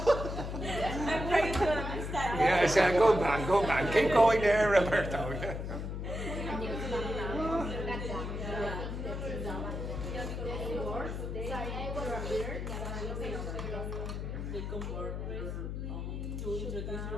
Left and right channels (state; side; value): noise; left; hum, 4 dB below the sound